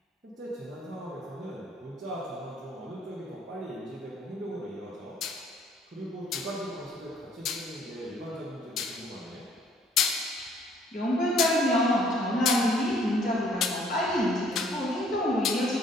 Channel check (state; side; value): normal; both; correlation 0.61